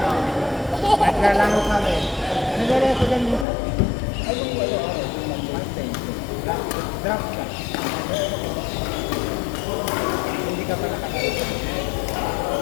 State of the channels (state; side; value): drops out; right; at 3.5 s